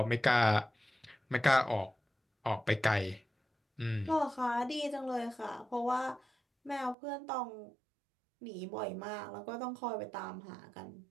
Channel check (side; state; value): left; drops out; at 7.0 s